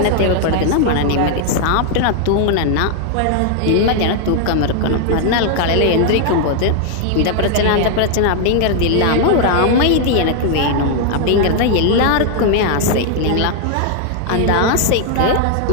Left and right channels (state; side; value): different; both; correlation 0.00